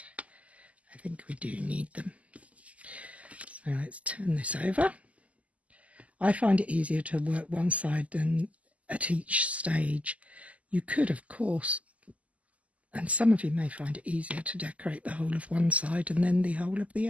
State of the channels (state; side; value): late; left; 0.069 ms